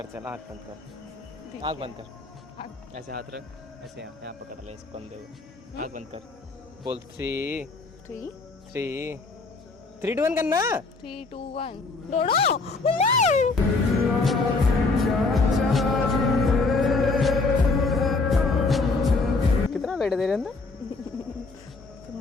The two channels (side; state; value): right; quieter; 3.8 dB